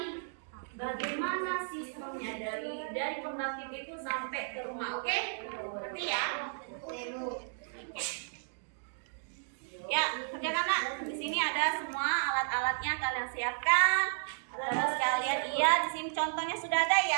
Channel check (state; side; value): silent; left; digital silence